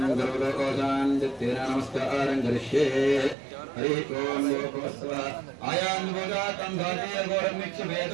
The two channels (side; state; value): left; drops out; at 3.4 s